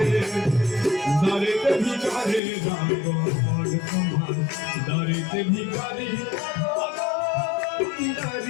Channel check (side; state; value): right; drops out; at 2.4 s